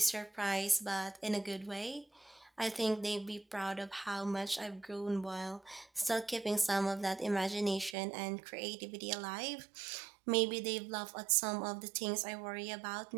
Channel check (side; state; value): left; drops out; at 8.0 s